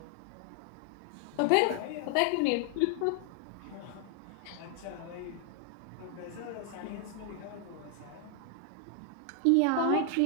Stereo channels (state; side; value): different; both; correlation 0.00